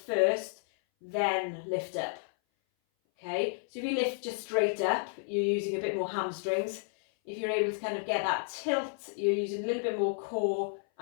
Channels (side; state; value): right; silent; 57 dB below the other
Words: then lift up. Okay, so if you lift just straight up, you're using a bit more hamstrings. If you're able to kind of get that tilt, you're using a little bit more core